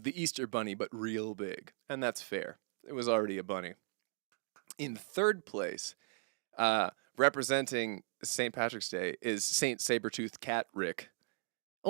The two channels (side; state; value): left; silent; 53 dB below the other